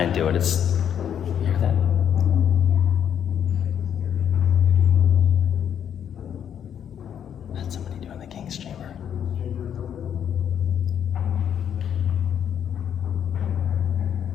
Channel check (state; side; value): quieter; right; 8.9 dB